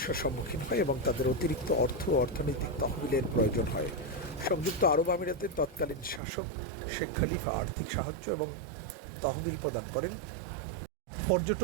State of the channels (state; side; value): drops out; left; at 6.2 s